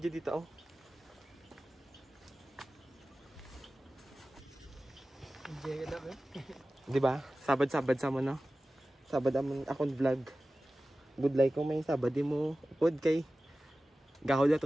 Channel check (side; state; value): both; normal; correlation 0.96